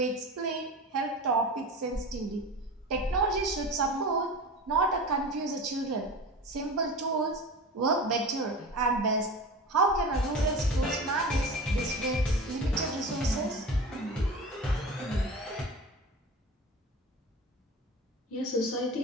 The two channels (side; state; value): both; normal; correlation 0.32